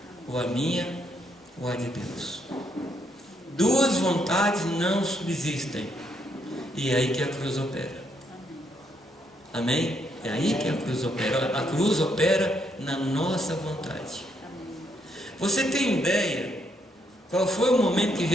ou a minha, ou a de Deus. Duas vontades não subsistem. E é aí que a cruz opera. Amém? É aí que a cruz opera. A cruz opera na nossa vontade. Você tem ideia qual foi o momento que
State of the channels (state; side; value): normal; both; correlation 0.75